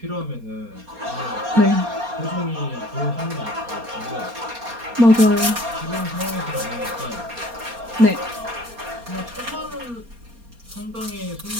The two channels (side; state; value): left; late; 4.3 ms